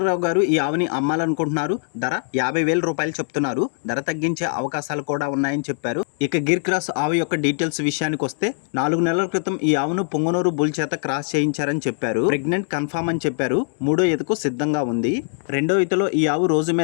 రావు గారు ఈ ఆవుని అమ్మాలనుకుంటున్నారు. ధర 50,000 రూపాయలు చెప్తున్నారు. ధర తగ్గించే అవకాశాలు కూడా ఉన్నాయని చెప్పారు. ఇక గిర్ క్రాస్ ఆవు యొక్క డీటెయిల్స్ విషయానికి వస్తే, 4 నెలల క్రితం ఈ ఆవును పొంగనూరు బుల్ చేత క్రాస్ చేయించారని చెప్పారు. ప్రెగ్నెంట్ కన్ఫర్మ్ అని చెప్పారు. 3వ ఈతకు సిద్ధంగా ఉంది. 2వ ఈతలో ఈ ఆవు రోజు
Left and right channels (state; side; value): silent; right; digital silence